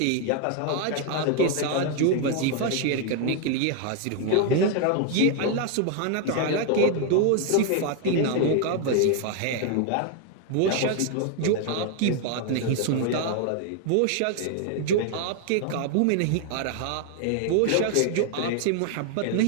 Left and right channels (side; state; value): both; different; correlation 0.00